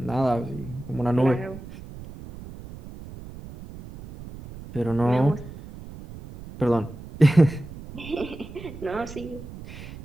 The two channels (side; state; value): right; noise; rumble, 14 dB below the sound